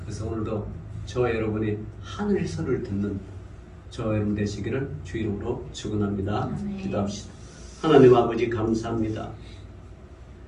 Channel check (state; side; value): identical; both; correlation 1.00